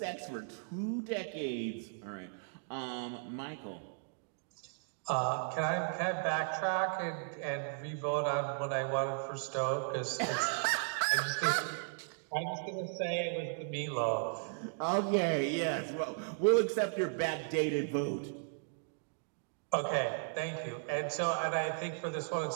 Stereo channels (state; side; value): silent; left; digital silence